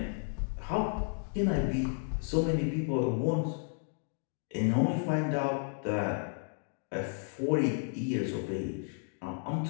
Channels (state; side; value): silent; right; 56 dB below the other